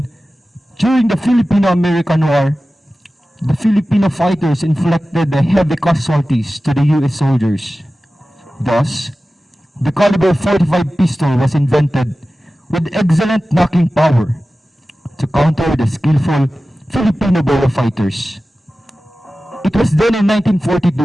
during the Filipino-American War, the Filipino fighters inflicted the heavy casualties to the U.S. soldiers. Thus, the caliber 45 pistol was invented with excellent knocking power to counter the skillful Filipino bolo fighters. It was then in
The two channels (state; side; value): normal; both; correlation 0.95